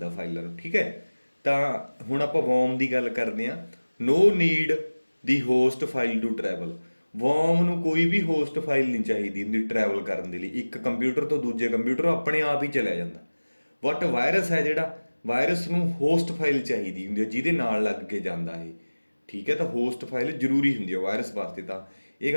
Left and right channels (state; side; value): inverted; both; correlation -1.00